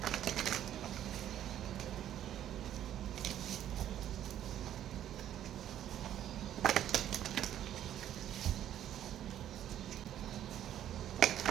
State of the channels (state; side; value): quieter; left; 11.2 dB